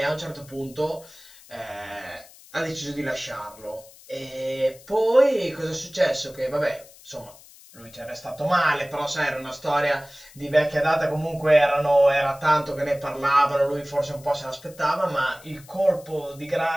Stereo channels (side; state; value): left; noise; hiss, 23 dB below the sound